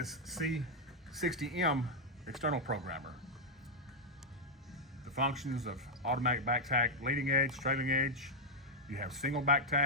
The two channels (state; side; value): normal; both; correlation -0.02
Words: C60M external programmer. The functions of automatic back tack, leading edge, trailing edge. You have single back